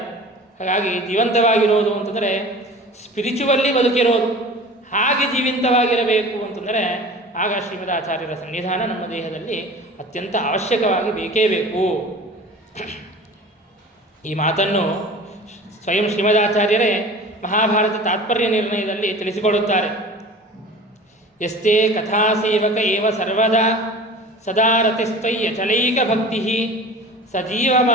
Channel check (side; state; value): both; normal; correlation 0.40